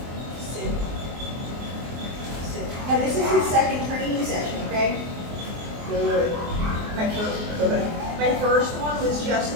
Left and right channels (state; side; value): late; left; 24 ms